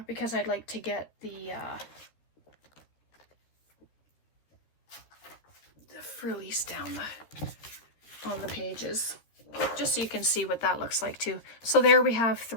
because I'd like to get the frillies down on the pages, just so you can see what that looks like too. So there we have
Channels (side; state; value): right; late; 13 ms